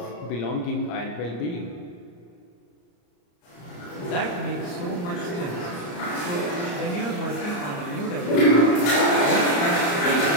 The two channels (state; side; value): late; right; 34 ms